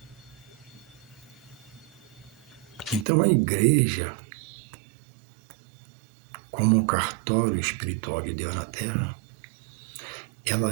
Então a igreja como um cartório espiritual de Deus na Terra, ela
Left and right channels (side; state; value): left; drops out; at 3.1 s